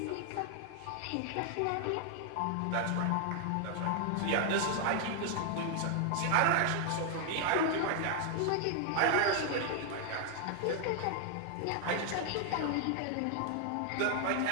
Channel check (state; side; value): different; both; correlation 0.00